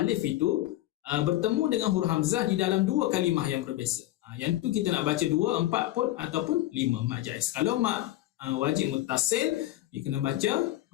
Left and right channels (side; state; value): right; quieter; 15.5 dB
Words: itu bertemu dengan huruf hamzah di dalam 2 kalimah yang berbeza. Yang tu kita nak baca 2, 4 pun ataupun 5 mad jaiz. Kalau mad wajib muttasil, dia kena baca